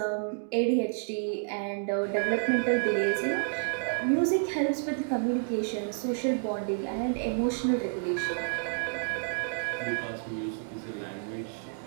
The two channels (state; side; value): silent; left; digital silence